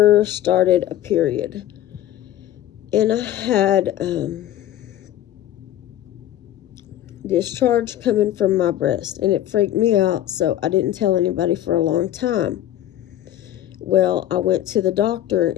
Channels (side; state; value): right; quieter; 12.6 dB